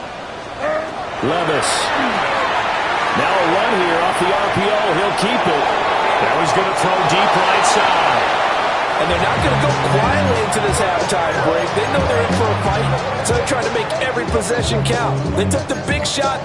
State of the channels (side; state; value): both; identical; correlation 1.00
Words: Levis. Now a run here off the RPO. He'll keep it. Now he's going to throw deep right side. And they're not going to go quietly into this halftime break. They know they're in for a fight, so they're trying to make every possession count. They took the big shot